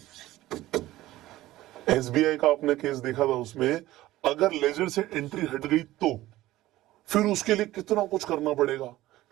एसबीआई का आपने केस देखा था, उसमें अगर लेजर से एंट्री हट गई तो फिर उसके लिए कितना कुछ करना पड़ेगा,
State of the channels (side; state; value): left; quieter; 16.2 dB